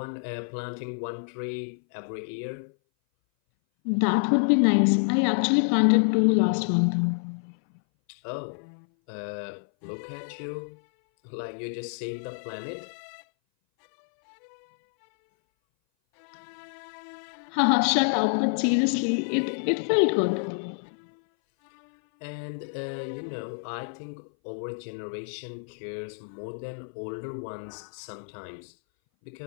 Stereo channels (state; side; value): silent; right; 58 dB below the other